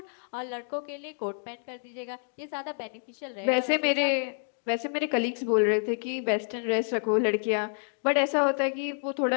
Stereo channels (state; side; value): silent; right; digital silence